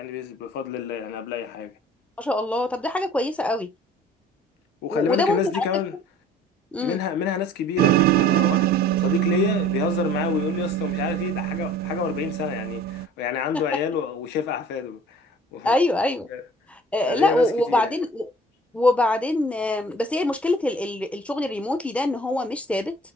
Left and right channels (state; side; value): normal; both; correlation 0.48